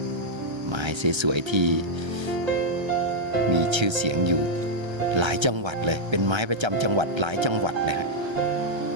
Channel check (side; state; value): left; late; 1.3 ms